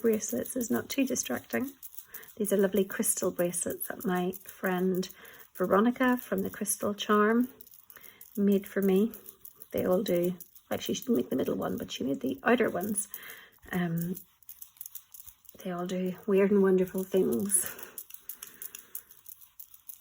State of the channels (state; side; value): identical; both; correlation 1.00